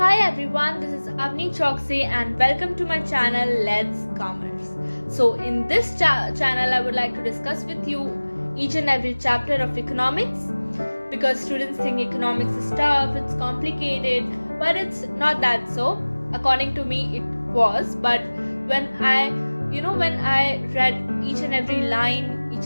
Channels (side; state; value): both; inverted; correlation -1.00